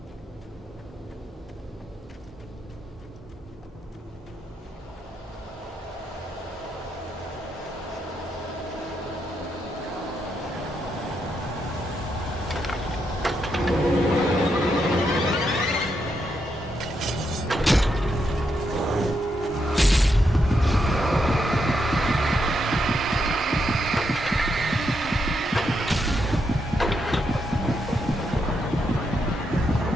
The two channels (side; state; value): both; normal; correlation 0.81